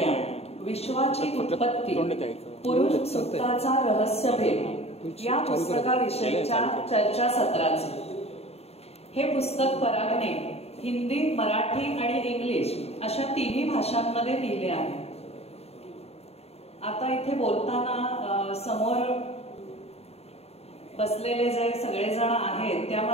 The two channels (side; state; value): right; late; 0.30 ms